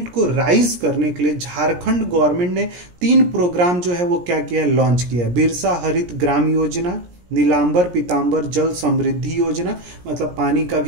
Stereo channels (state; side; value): late; left; 17 ms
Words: को राइज करने के लिए झारखंड गवर्नमेंट ने 3 प्रोग्राम जो है वो क्या किया है, लॉन्च किया है। बिरसा हरित ग्राम योजना, नीलांबर पीतांबर जल समृद्धि योजना, मतलब पानी का